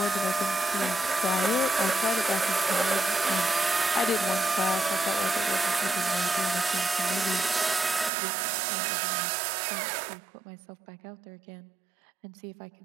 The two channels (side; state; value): left; drops out; at 8.1 s